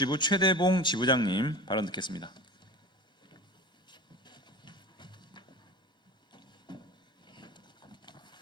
최대봉 지부장님 발언 듣겠습니다.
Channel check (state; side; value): late; left; 1.1 ms